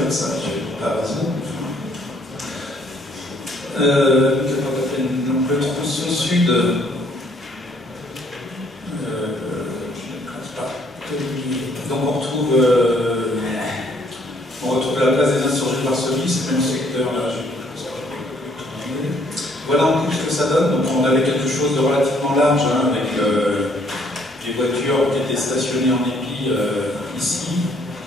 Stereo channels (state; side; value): normal; both; correlation 0.64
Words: ça. Je n'ai pas raison. Donc le tronçon sud, donc on retrouve la place des insurgés de Varsovie, c'est le même secteur là. Voilà en gros ce que ça donne. Donc on avait quelque chose de relativement large, hein, avec les voitures qui étaient stationnées en épi ici,